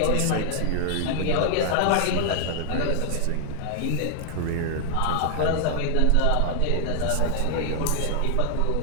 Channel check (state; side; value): different; both; correlation 0.00